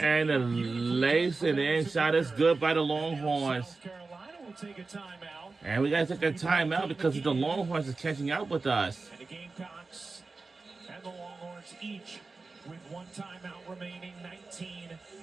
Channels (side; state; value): left; quieter; 3.9 dB